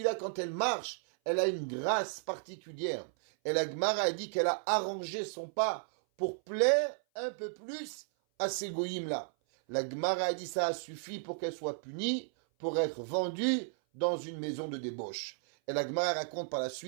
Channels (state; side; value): silent; left; 55 dB below the other